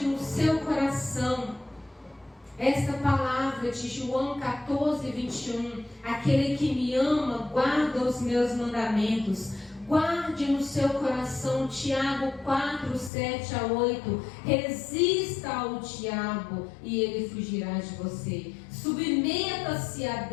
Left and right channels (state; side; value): drops out; right; at 13.1 s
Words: no seu coração esta palavra de João 14:21. Aquele que me ama, guarda os meus mandamentos. Guarde no seu coração Tiago 4:7-8. Resista ao diabo e ele fugirá de você. Submeta-se a